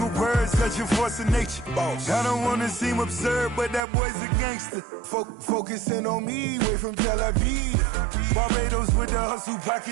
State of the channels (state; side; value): drops out; left; at 3.8 s